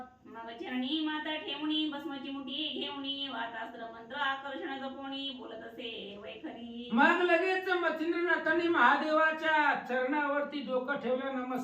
मग चरणी माता ठेवणी भस्माची मुठी घेवणी वातास्त्र मंत्र आकर्षण जपोणी बोलत असे वैखरी. मग लगेच मच्छिंद्रनाथांनी महादेवाच्या चरणावरती डोकं ठेवलं,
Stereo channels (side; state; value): both; identical; correlation 1.00